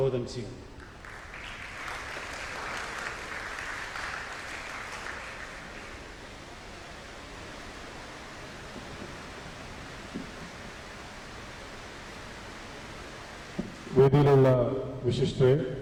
ചെയ്യും. വേദിയിലുള്ള വിശിഷ്ട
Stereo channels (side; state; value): both; identical; correlation 1.00